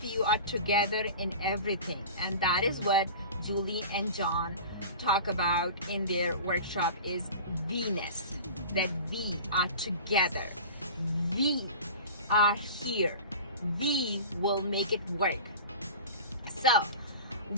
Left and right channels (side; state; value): both; inverted; correlation -0.35